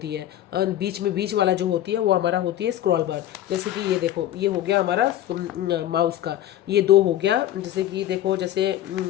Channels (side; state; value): right; quieter; 12.5 dB